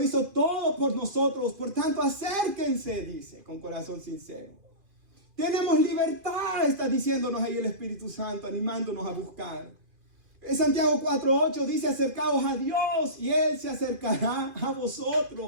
hizo todo por nosotros, por tanto acérquense, dice, con corazón sincero. Tenemos libertad, está diciéndonos ahí el Espíritu Santo, animándonos a buscar. En Santiago 4:8 dice, acercaos a Dios y Él se acercará a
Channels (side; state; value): left; late; 2.5 ms